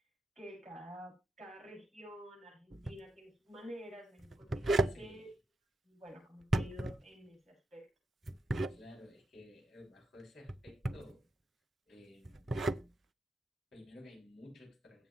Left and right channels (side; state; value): both; normal; correlation 0.85